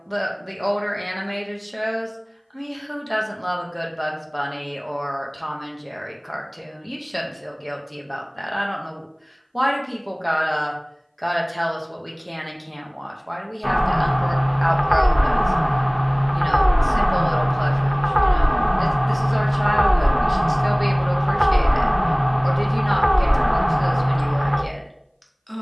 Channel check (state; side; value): identical; both; correlation 1.00